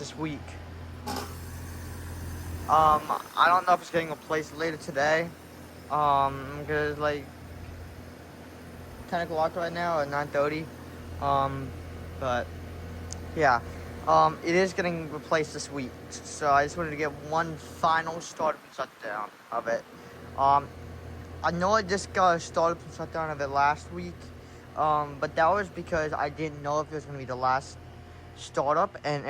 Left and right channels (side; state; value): both; identical; correlation 1.00